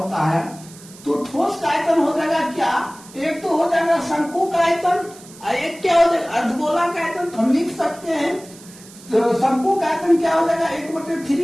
है? तो ठोस का आयतन हो जाएगा क्या? एक तो हो जाएगा शंकु का आयतन और एक क्या हो जाएगा? अर्धगोला का आयतन। तो हम लिख सकते हैं तो शंकु का आयतन क्या हो जाएगा?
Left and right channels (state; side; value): noise; right; hiss, 20 dB below the sound